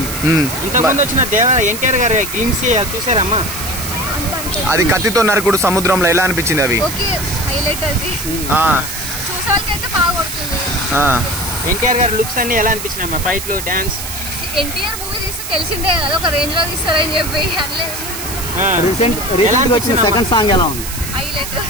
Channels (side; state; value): right; noise; hiss, 8 dB below the sound